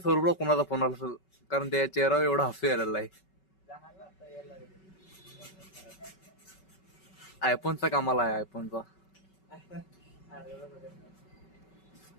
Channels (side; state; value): right; late; 5.3 ms